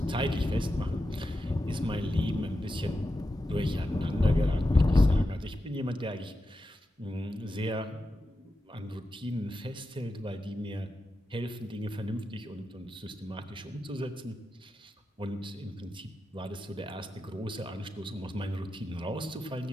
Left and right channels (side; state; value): both; normal; correlation 0.90